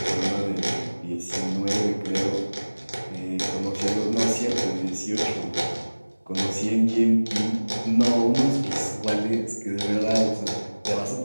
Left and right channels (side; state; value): both; inverted; correlation -1.00